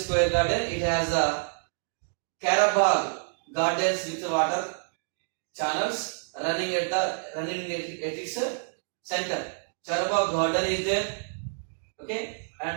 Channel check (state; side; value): silent; left; digital silence